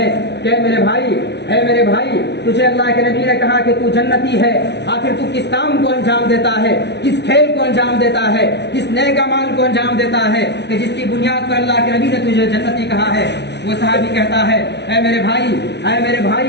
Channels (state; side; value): late; right; 0.50 ms